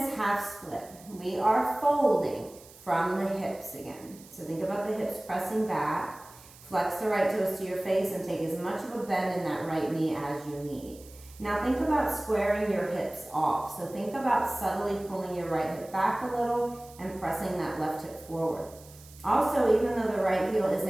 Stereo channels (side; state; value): right; noise; hiss, 22 dB below the sound